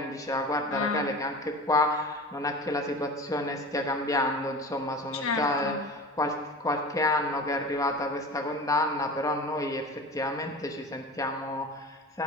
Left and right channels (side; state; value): both; normal; correlation 0.34